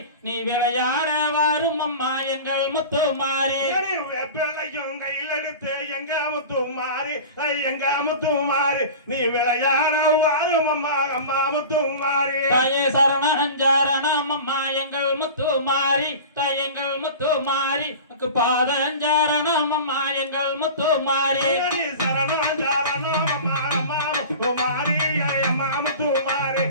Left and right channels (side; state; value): both; inverted; correlation -0.35